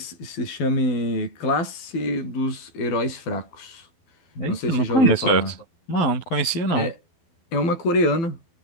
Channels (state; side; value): late; right; 11 ms